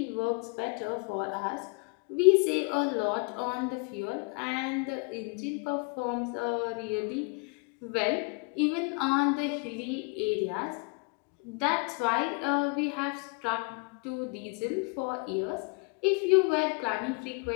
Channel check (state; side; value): quieter; right; 32.0 dB